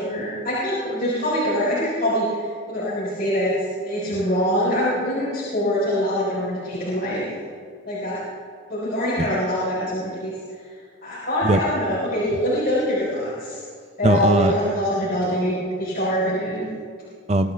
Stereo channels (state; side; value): normal; both; correlation 0.29